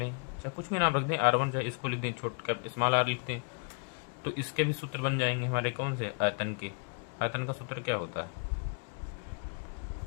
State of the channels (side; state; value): right; quieter; 36.6 dB